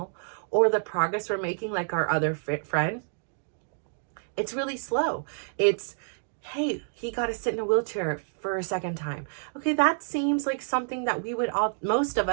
or the progress we're making, like our other friend, it's really slow. It's, hey, he got to sit in a wheelchair for a second time. Okay, that seems like something that most of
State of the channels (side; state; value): left; silent; digital silence